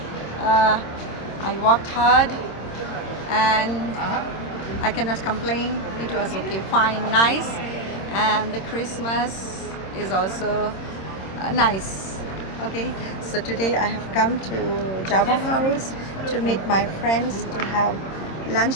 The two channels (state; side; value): late; right; 26 ms